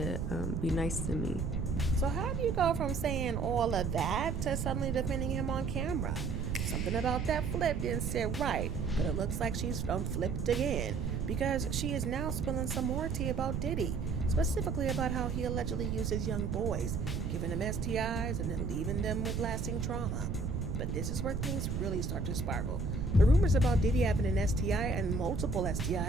be nice to me. So how do you go from saying all of that to suddenly defending him on camera? Something about that flip didn't sit right, but it looks like she's flipped again, because she is now spilling some more tea about Diddy, specifically about how he allegedly uses young boys, giving them STIs and then leaving them with lasting trauma. But this is where things really start to spiral. The rumors about Diddy having an STI and multiple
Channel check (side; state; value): right; noise; rumble, 2 dB below the sound